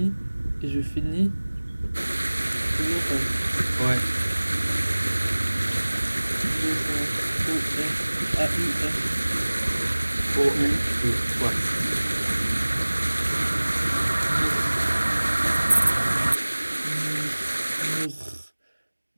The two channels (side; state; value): both; inverted; correlation -1.00